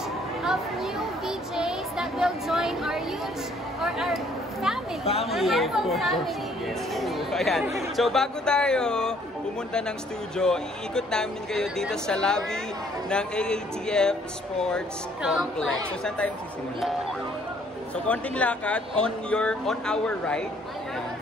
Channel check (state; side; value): normal; both; correlation 0.62